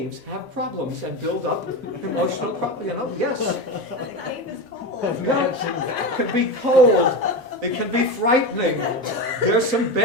have problems and build up emotional problems. Yes. The cave is cold. It can be cold. It can be frightening. There's some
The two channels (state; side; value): normal; both; correlation 0.21